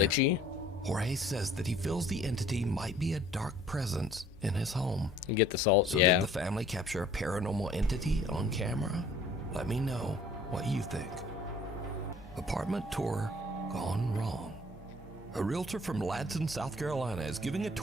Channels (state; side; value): normal; both; correlation 0.54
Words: Jorge says that he feels the entity might be a dark presence in his home. You get the salt, so yeah. Did the family capture a paranormal entity on camera? Let me know what you think. Apartment tour gone wrong. A realtor from Ladson, South Carolina is giving a